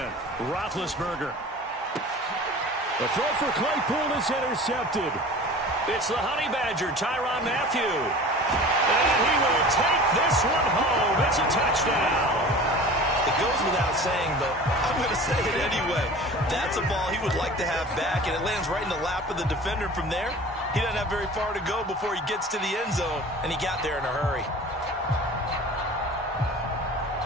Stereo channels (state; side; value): normal; both; correlation 0.40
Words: Roethlisberger. The throw for Claypool is intercepted. It's the Honey Badger, Tyrann Mathieu. And he will take this one home. It's a touchdown. It goes without saying, but I'm going to say it anyway. That's a ball he would like to have back, and it lands right in the lap of the defender from there. He doesn't have very far to go before he gets to the end zone, and he got there in a hurry.